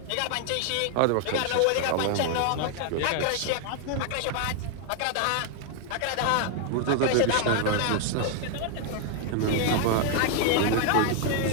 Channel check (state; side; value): different; both; correlation 0.00